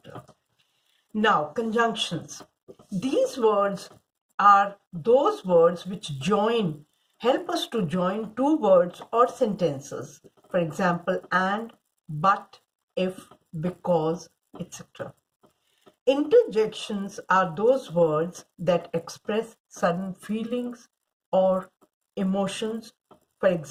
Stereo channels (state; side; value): identical; both; correlation 1.00